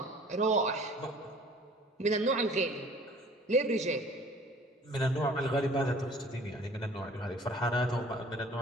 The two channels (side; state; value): both; normal; correlation 0.51